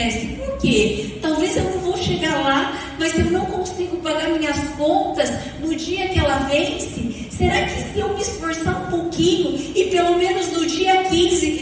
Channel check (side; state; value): both; identical; correlation 1.00